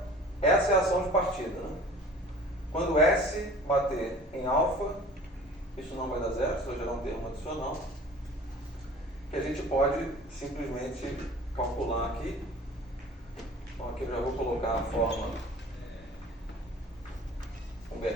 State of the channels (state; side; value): normal; both; correlation 0.45